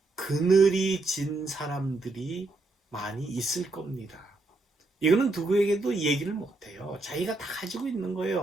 그늘이 진 사람들이 많이 있을 겁니다. 이거는 누구에게도 얘기를 못해요. 자기가 다 가지고 있는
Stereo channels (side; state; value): left; quieter; 3.1 dB